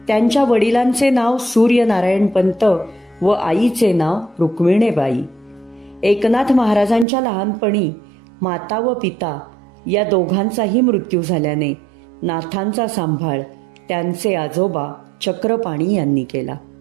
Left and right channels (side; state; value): left; drops out; at 7.1 s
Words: त्यांच्या वडिलांचे नाव सूर्यनारायण पंत व आईचे नाव रुक्मिणीबाई. एकनाथ महाराजांच्या लहानपणी माता व पिता या दोघांचाही मृत्यू झाल्याने नाथांचा सांभाळ त्यांचे आजोबा चक्रपाणी यांनी केला.